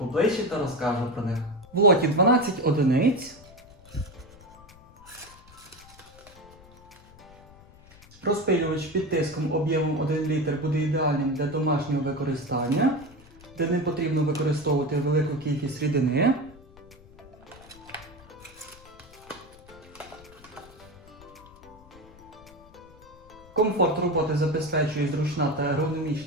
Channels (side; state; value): left; noise; rumble, 23 dB below the sound